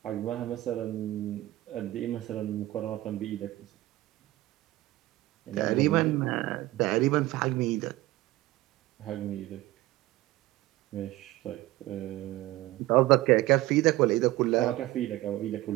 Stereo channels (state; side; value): quieter; left; 17.4 dB